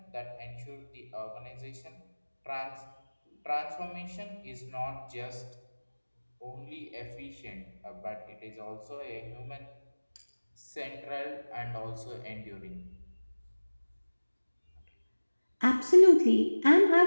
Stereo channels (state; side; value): inverted; both; correlation -1.00